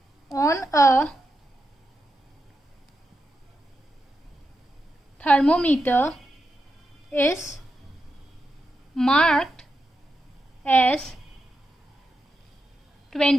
on a thermometer is marked as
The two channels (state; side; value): normal; both; correlation 0.87